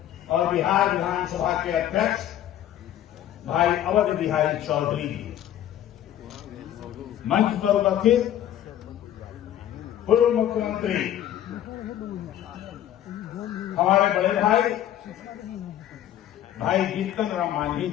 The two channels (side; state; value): right; quieter; 11.6 dB